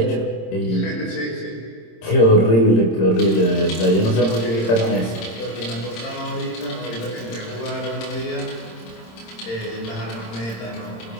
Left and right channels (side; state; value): right; late; 26 ms